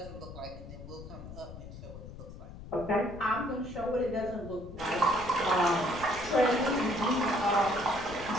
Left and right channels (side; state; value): left; noise; rumble, 13 dB below the sound